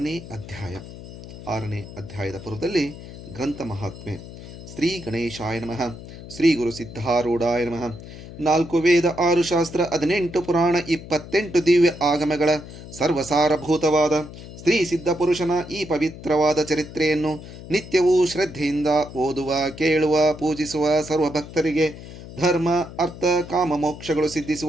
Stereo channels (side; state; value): left; noise; hum, 14 dB below the sound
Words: ಅಧ್ಯಾಯದ ಪೂರ್ವದಲ್ಲಿ ಗ್ರಂಥ ಮಹಾತ್ಮೆ. ಶ್ರೀ ಗಣೇಶಾಯ ನಮಃ. ಶ್ರೀ ಗುರು ಸಿದ್ಧಾರೂಢಾಯ ನಮಃ. 4 ವೇದ, 6 ಶಾಸ್ತ್ರ, 18 ಪುರಾಣ, 28 ದಿವ್ಯ ಆಗಮಗಳ ಸರ್ವಸಾರಭೂತವಾದ ಸ್ತ್ರೀ ಸಿದ್ಧ ಪುರುಷನ ಈ ಪವಿತ್ರವಾದ ಚರಿತ್ರೆಯನ್ನು ನಿತ್ಯವೂ ಶ್ರದ್ಧೆಯಿಂದ ಓದುವ, ಕೇಳುವ, ಪೂಜಿಸುವ ಸರ್ವ ಭಕ್ತರಿಗೆ ಧರ್ಮ, ಅರ್ಥ, ಕಾಮ, ಮೋಕ್ಷಗಳು